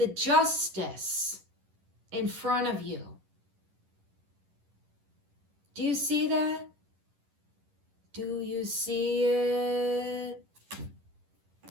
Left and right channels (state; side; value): late; left; 11 ms